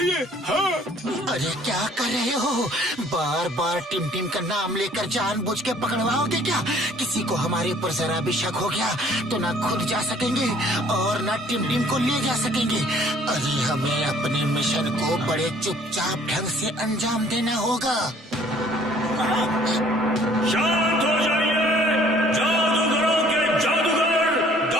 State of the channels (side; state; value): both; normal; correlation 0.57